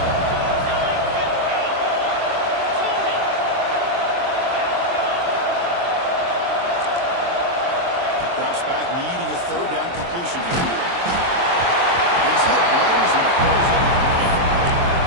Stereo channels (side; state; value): left; late; 23 ms